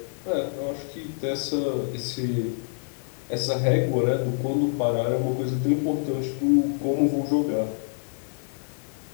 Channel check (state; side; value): silent; right; 61 dB below the other